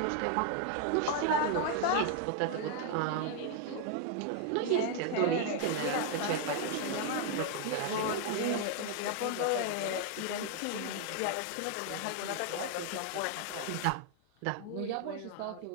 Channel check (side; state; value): both; different; correlation 0.00